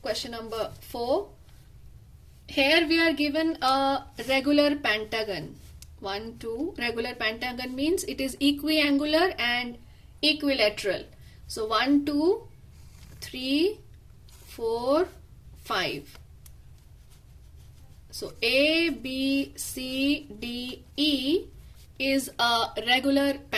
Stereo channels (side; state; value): both; identical; correlation 1.00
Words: Question number 4. Here we are given a regular pentagon. 1, 2. Regular pentagon means it is equiangular and equilateral. So 1, 2, 3, 4, 5. So A, B, C, D, E is a regular